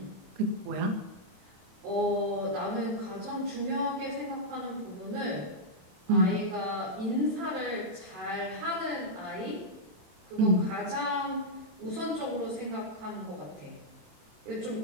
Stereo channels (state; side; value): late; left; 27 ms